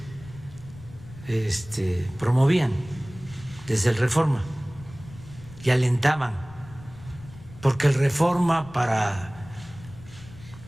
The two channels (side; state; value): left; noise; rumble, 18 dB below the sound